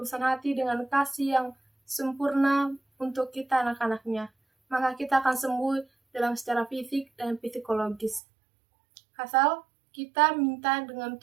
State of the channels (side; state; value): left; drops out; at 8.2 s